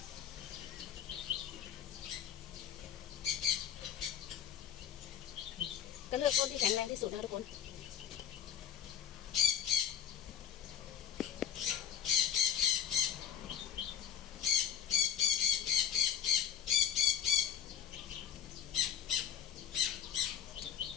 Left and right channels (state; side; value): quieter; right; 9.2 dB